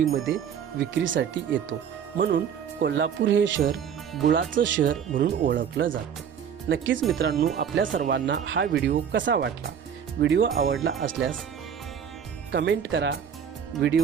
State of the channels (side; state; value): left; quieter; 8.0 dB